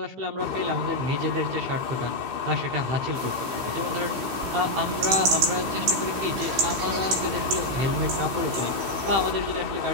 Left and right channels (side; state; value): left; late; 16 ms